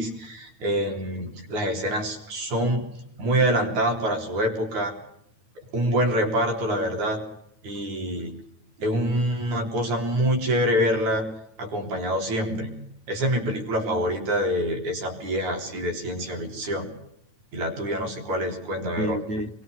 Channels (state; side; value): late; left; 9.1 ms